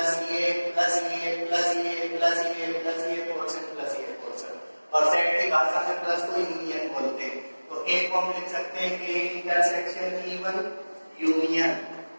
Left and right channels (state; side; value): inverted; both; correlation -1.00